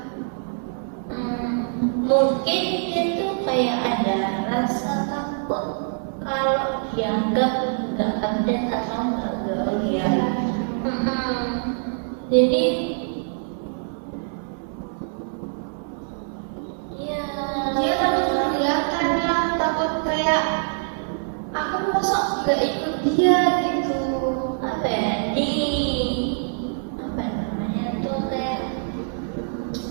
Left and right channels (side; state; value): left; silent; 62 dB below the other